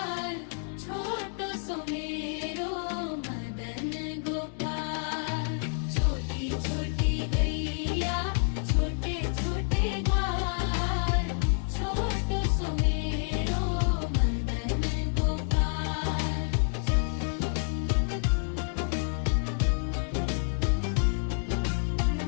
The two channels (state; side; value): silent; right; 59 dB below the other